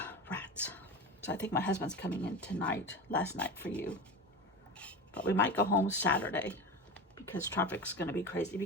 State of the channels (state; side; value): normal; both; correlation 0.27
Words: Rats. So I think my husband's coming in tonight, last night for you. But we might go home Saturday because traffic's going to be crazy